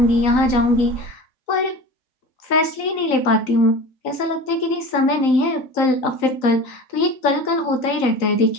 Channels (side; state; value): right; late; 3.9 ms